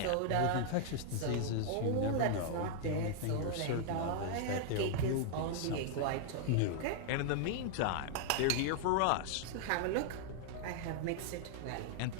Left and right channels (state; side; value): different; both; correlation -0.01